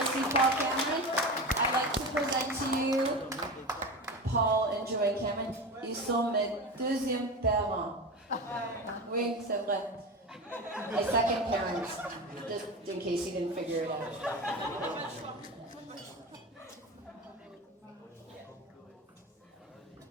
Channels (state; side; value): normal; both; correlation 0.25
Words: aussi Paul Cameron. I'd like to present to you Paul and Joanne Cameron. Ils sont mes deuxièmes parents. Oui, c'est vrai. My second parents, just in case you didn't figure it out.